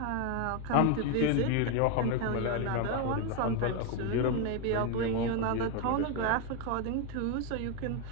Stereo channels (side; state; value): both; different; correlation 0.02